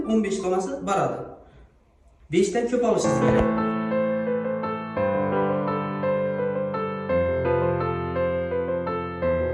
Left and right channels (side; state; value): both; identical; correlation 1.00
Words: 15 donasi baradi. 5 dan ko'p olishingiz kerak.